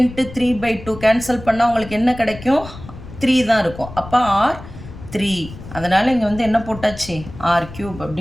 3/2 கேன்சல் பண்ணால் உங்களுக்கு என்ன கிடைக்கும், 3 தான் இருக்கும். அப்போ ஆர் 3. அதனால் இங்கே வந்து என்ன போட்டாச்சு, r³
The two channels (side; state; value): left; noise; rumble, 14 dB below the sound